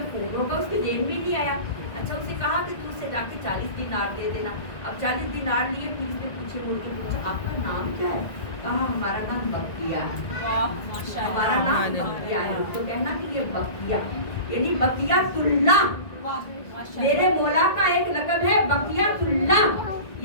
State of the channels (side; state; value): right; late; 1.9 ms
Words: फोन होगा, उसके जहन में नहीं आया। अच्छा उससे कहा कि तू उससे जाके 40 दिनार दे देना। अब 40 दिनार लिए, फिर इसने पीछे मुड़ के पूछा आपका नाम क्या है? कहा हमारा नाम बकिया है। हमारा नाम बकिया है। तो कहना कि ये बकिया यानी बकियातुल्लाह, मेरे मौला का एक लक़ब है बकियातुल्लाह,